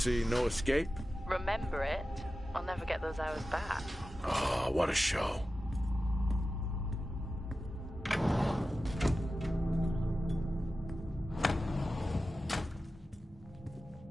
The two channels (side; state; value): both; normal; correlation 0.94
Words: No Escape? Remember it? I'll never get those hours back. Oh, what a show.